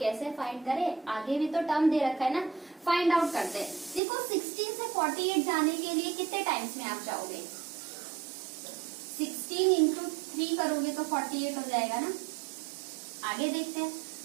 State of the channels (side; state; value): left; drops out; at 4.0 s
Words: फाइंड करें? आगे भी तो टर्म दे रखा है ना, फाइंड आउट करते हैं। देखो 16 से 48 जाने के लिए कितने टाइम्स में आप जाओगे? 16 इंटू 3 करोगे तो 48 हो जाएगा ना। आगे देखते हैं।